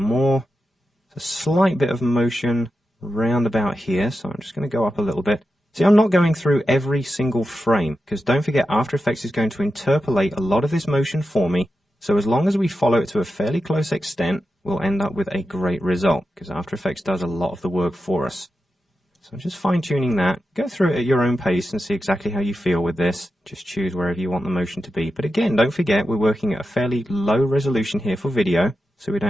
A slight bit of motion round about here, so I'm just going to go up a little bit. See, I'm not going through every single frame, because don't forget After Effects is going to interpolate a lot of this motion for me, so as long as we follow it to a fairly close extent, we'll end up with a great result, because After Effects does a lot of the work for us. So I'm just fine-tuning that. Go through it at your own pace and see exactly how you feel with this. Just choose wherever you want the motion to be. But again, don't forget we're working at a fairly low resolution here for video, so we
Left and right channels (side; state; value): both; normal; correlation 0.90